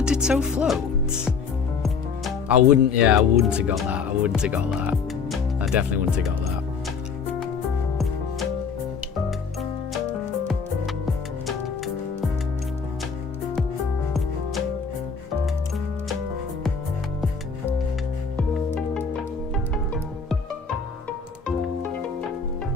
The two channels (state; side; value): quieter; right; 5.5 dB